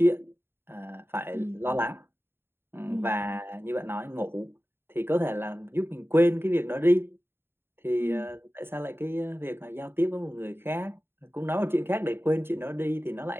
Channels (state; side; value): late; left; 0.11 ms